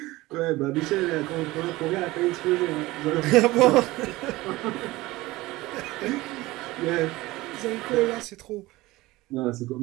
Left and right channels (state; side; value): quieter; left; 19.3 dB